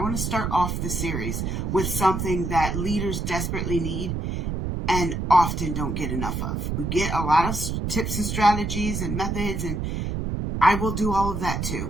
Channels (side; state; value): right; noise; rumble, 2 dB below the sound